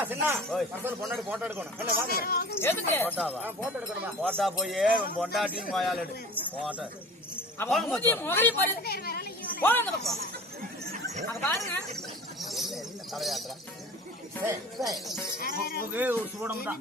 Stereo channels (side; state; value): both; normal; correlation 0.40